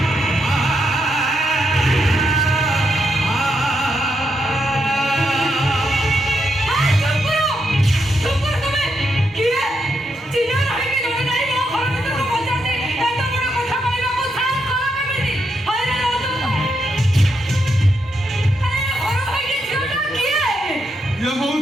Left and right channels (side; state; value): both; normal; correlation 0.81